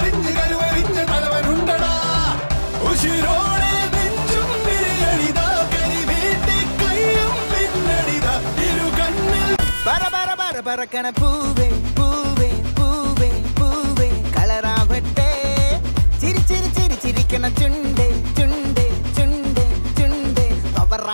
കരുവറിഞ്ഞ് തലവനുണ്ടടാ ഉശിരോടെ നെഞ്ചും വിരിയണിതാ കരി വീട്ടി കയ്യും പിന്നണിതാ ഇരു കണ്ണിൽ പറക്കണ പൂവേ പൂവേ പൂവേ പൂവേ കളറാവട്ടെ ചിരി ചിരി ചിരി ചിരിക്കണ ചുണ്ടേ ചുണ്ടേ ചുണ്ടേ ചുണ്ടേ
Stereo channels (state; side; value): inverted; both; correlation -1.00